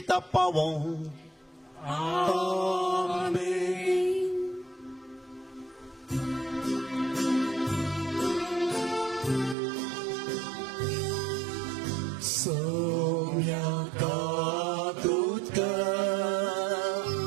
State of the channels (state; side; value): drops out; left; at 9.6 s